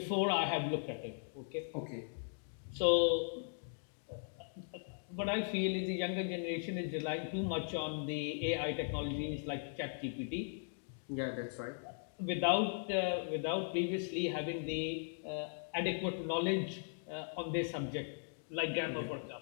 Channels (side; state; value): right; silent; digital silence